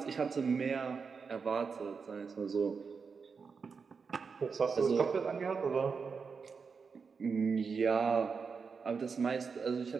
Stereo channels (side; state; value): left; quieter; 5.4 dB